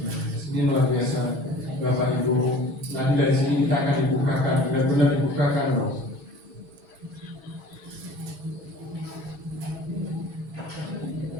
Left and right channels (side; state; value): left; late; 6.2 ms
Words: Ini luar biasa, Bapak Ibu. Nanti dari sini kita akan dibukakan, benar-benar dibukakan loh.